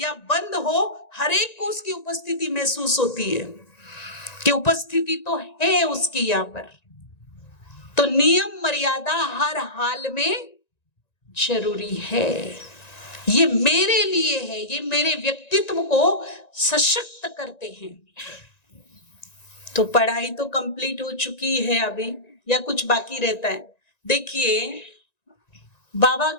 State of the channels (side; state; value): right; late; 1.9 ms